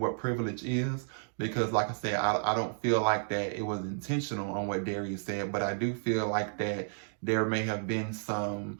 privilege is. Because like I said, I don't feel like that it was intentional on what Darius said, but I do feel like that there may have been some,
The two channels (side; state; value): left; silent; digital silence